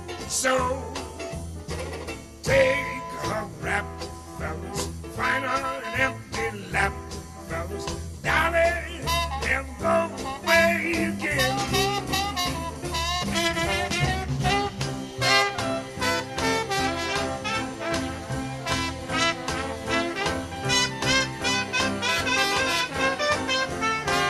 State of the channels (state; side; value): identical; both; correlation 1.00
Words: So take a rap, fellas, find her an empty lap, fellas. Dolly, never go away again.